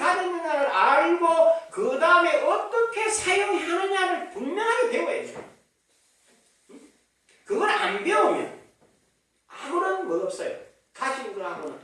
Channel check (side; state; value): both; identical; correlation 1.00